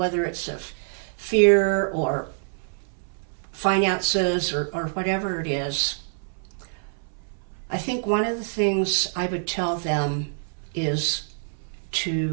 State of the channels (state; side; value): silent; left; 61 dB below the other